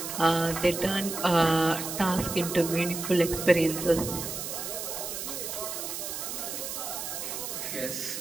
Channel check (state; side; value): noise; right; hiss, 5 dB below the sound